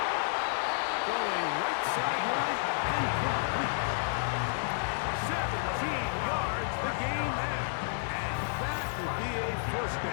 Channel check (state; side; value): silent; right; 57 dB below the other